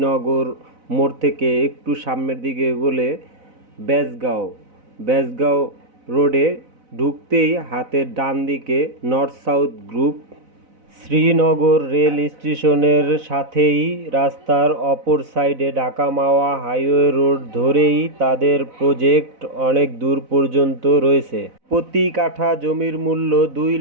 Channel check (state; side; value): late; left; 4.0 ms